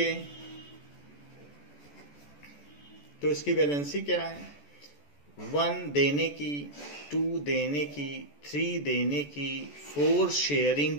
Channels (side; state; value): right; late; 14 ms